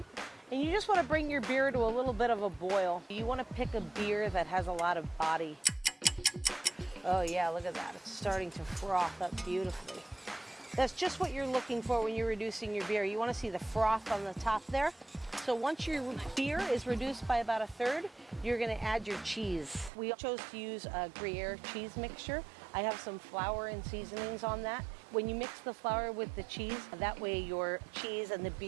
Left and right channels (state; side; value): drops out; left; at 19.9 s